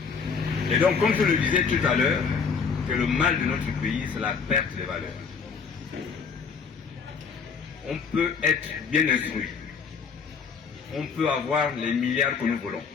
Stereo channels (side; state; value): right; quieter; 5.7 dB